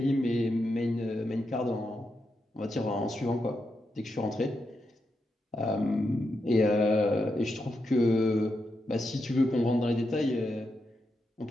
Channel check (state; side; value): normal; both; correlation 0.85